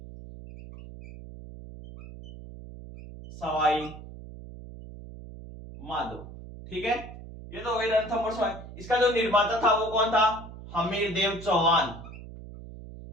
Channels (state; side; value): noise; right; hum, 14 dB below the sound